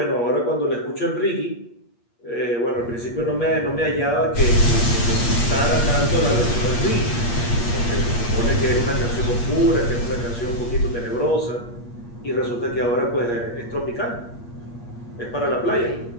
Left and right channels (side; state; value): right; late; 8.5 ms